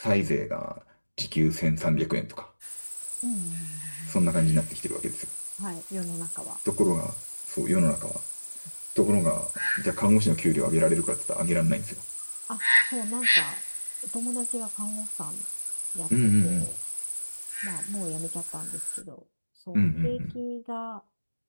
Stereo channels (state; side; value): inverted; both; correlation -1.00